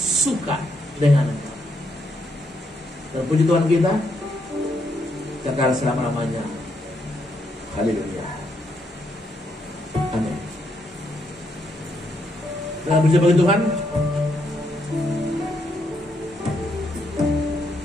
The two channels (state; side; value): normal; both; correlation 0.76